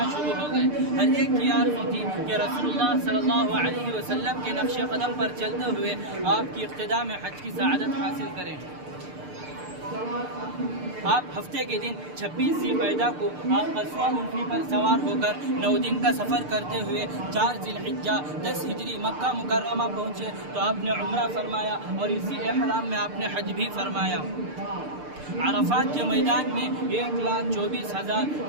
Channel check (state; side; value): late; left; 6.7 ms